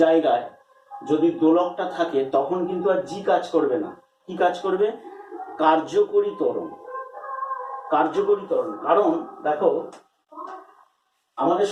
জায়গায় যদি দোলকটা থাকে তখন কিন্তু আর জি কাজ করবে না। কি কাজ করবে? কার্যকরী ত্বরণ। কার্যকরী ত্বরণ, কারণ দেখো আমাদের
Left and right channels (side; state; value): both; identical; correlation 1.00